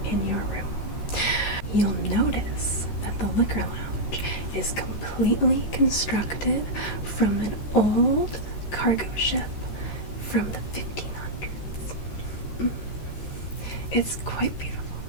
in your room. You'll notice that the liquor lounge is completely constructed from an old cargo ship from the 1500s. It's quite beautiful.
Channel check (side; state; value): right; late; 13 ms